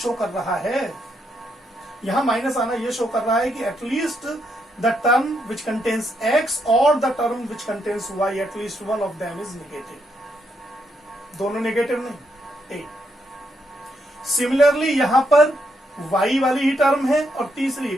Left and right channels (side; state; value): both; normal; correlation 0.78